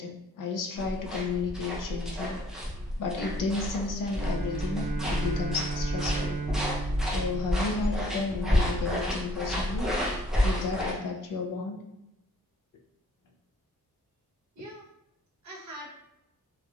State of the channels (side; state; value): both; normal; correlation 0.62